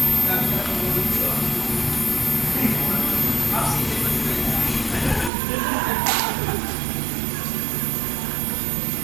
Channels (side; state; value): left; drops out; at 5.3 s